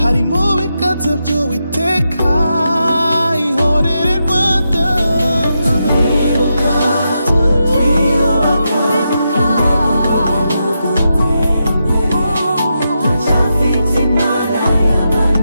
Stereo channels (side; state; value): both; inverted; correlation -0.86